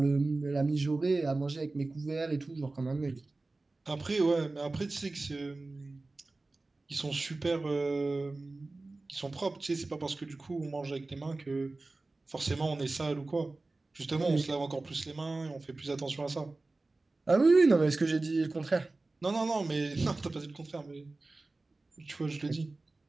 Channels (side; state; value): left; quieter; 3.2 dB